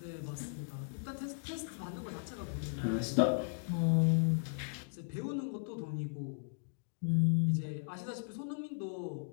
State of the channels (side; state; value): right; silent; digital silence